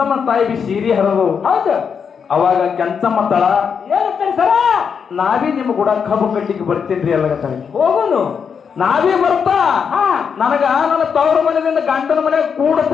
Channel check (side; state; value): right; quieter; 6.6 dB